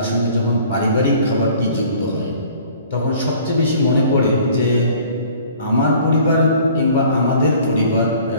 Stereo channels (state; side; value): inverted; both; correlation -0.51